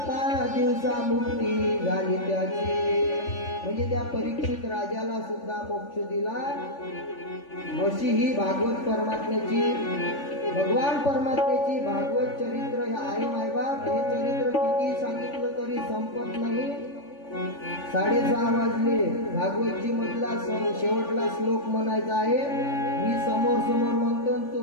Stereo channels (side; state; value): right; late; 3.5 ms